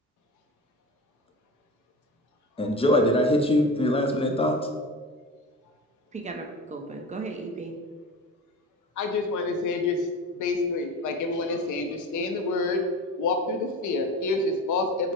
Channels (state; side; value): normal; both; correlation 0.31